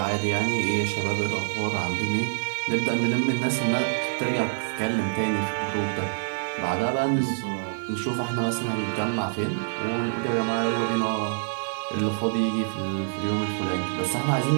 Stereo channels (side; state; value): left; silent; digital silence